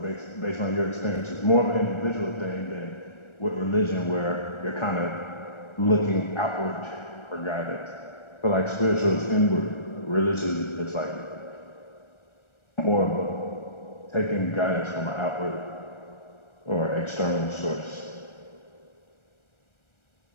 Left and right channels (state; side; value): late; right; 1.4 ms